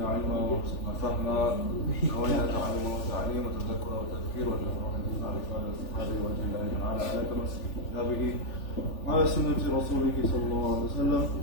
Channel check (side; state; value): right; late; 3.4 ms